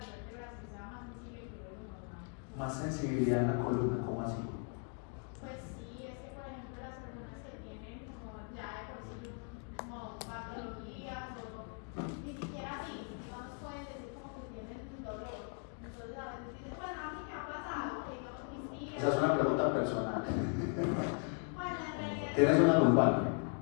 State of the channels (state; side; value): quieter; right; 37.9 dB